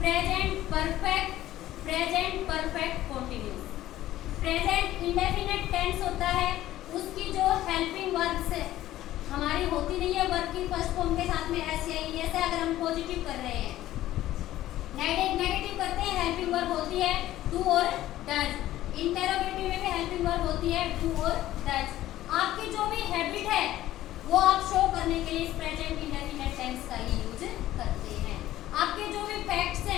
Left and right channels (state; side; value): quieter; right; 14.3 dB